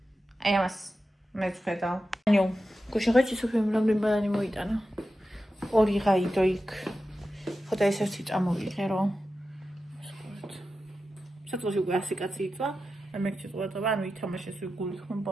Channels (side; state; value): both; normal; correlation 0.92